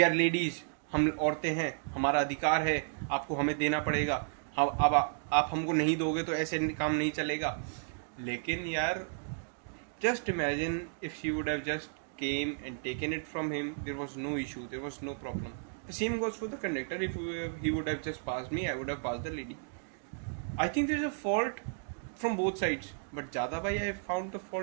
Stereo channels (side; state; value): left; silent; digital silence